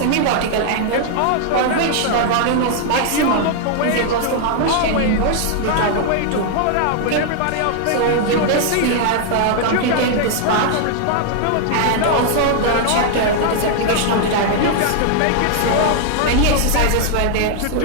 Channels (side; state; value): both; different; correlation 0.00